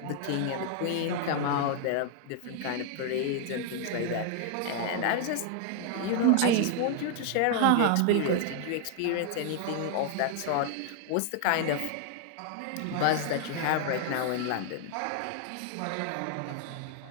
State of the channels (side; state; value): both; different; correlation 0.00